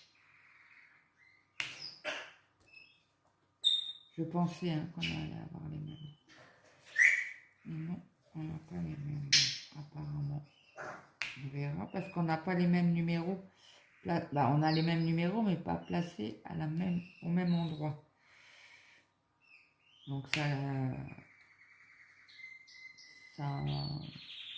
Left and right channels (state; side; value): identical; both; correlation 1.00